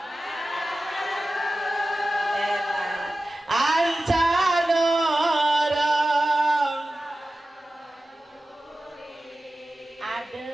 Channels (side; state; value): both; normal; correlation 0.95